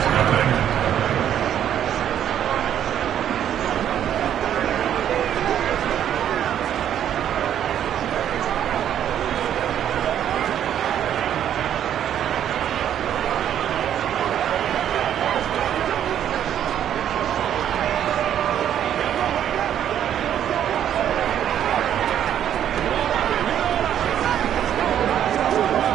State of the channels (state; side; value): quieter; left; 10.2 dB